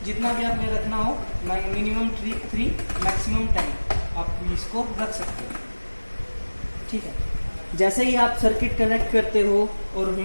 जितना भी आपने रखना हो, मिनिमम 3 मैक्सिमम 10 आप इसको रख सकते हो, ठीक है। जैसे ही आप सर्किट कनेक्ट करते हो और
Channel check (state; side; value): inverted; both; correlation -1.00